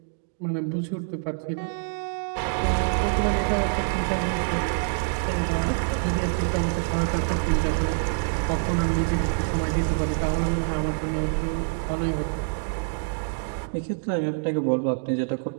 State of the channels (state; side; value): silent; left; digital silence